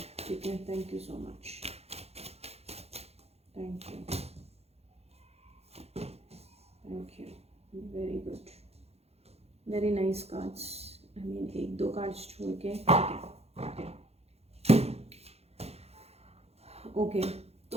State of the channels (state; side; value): late; left; 0.30 ms